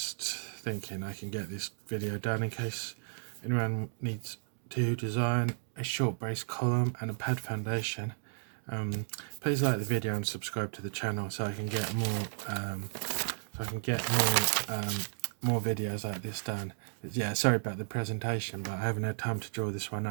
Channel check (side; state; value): left; silent; digital silence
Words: thinking I can get this video done in case anyone needs to design a short brace column and a pad foundation. Please like the video and subscribe to the channel so I can get more videos like this done. Yeah, sorry about the presentation, but I haven't had time to draw this one